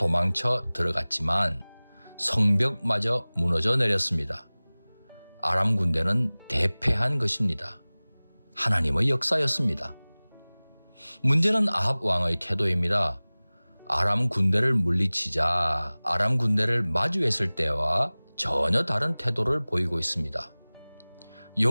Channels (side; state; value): both; inverted; correlation -1.00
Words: 들어갔지만 성벽마저 무너져 내렸습니다. 아람 군대는 대패한 것입니다. 하나님의 역사였습니다. 문제는 아합 왕의 태도입니다. 아람 군대를 물리치자 아람 군대를 마주했을 때와 전혀 다른 태도를 보이고 있습니다.